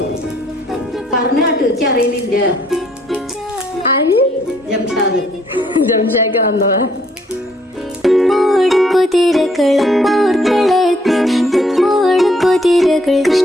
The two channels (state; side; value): normal; both; correlation 0.67